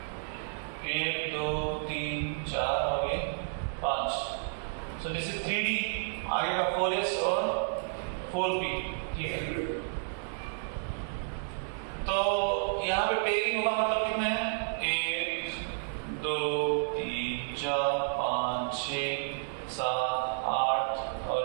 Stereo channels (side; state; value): left; silent; digital silence